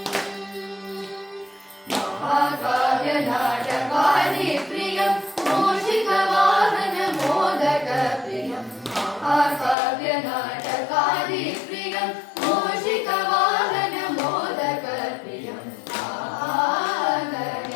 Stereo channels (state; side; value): drops out; right; at 9.8 s